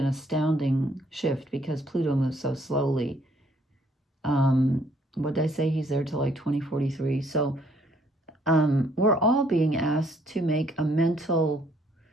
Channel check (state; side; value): normal; both; correlation 0.65